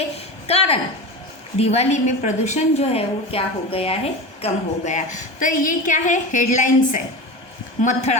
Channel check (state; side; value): late; right; 1.2 ms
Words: कारण दिवाली में प्रदूषण जो है वो क्या हो गया है? कम हो गया. तो ये क्या है? हेडलाइन्स है.